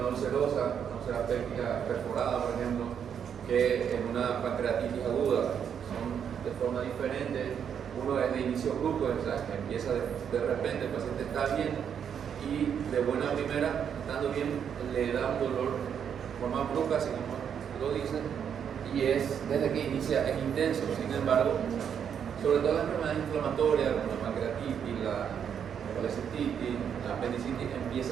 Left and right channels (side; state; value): left; quieter; 8.0 dB